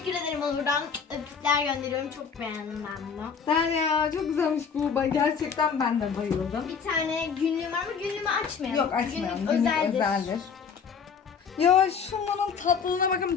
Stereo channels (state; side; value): quieter; right; 6.3 dB